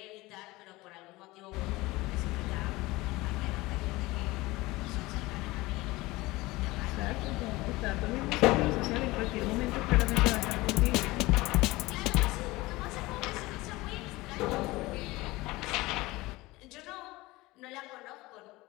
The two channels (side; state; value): right; quieter; 20.5 dB